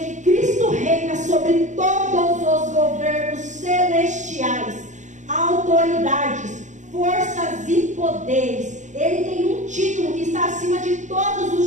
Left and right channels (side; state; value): left; late; 0.35 ms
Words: Cristo reina sobre todos os governos celestiais, autoridades, forças e poderes. Ele tem um título que está acima de todos